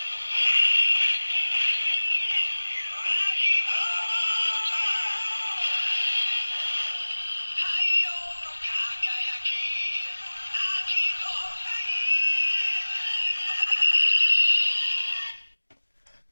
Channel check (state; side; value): inverted; both; correlation -1.00